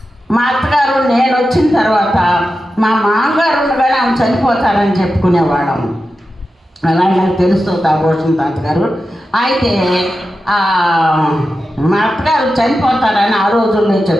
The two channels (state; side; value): normal; both; correlation 0.91